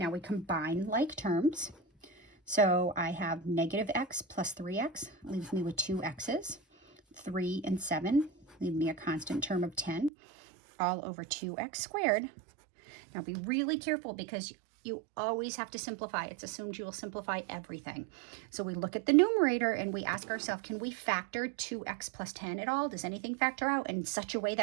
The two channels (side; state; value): left; drops out; at 10.1 s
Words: now we combine like terms. So I have negative x plus 3x, leaves me with 2 x's. 3 and 7 leave me a constant term of 10, all over 2x squared. Now be really careful because you always have to simplify. It's assumed you will simplify everything. So we look at the numerator and we ask ourselves, can we factor 2x plus 10 at all? Does anything factor out in such a way